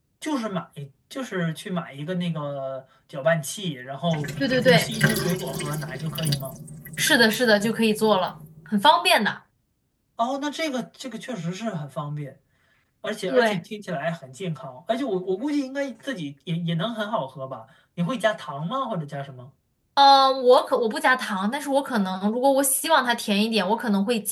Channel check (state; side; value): identical; both; correlation 1.00